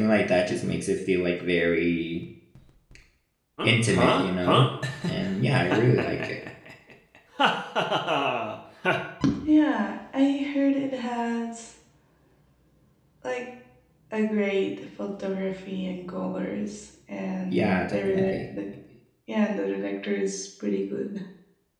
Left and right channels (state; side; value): identical; both; correlation 1.00